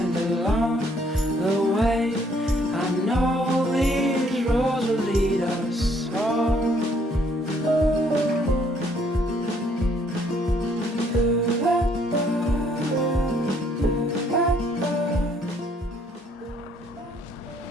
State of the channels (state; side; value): normal; both; correlation 0.66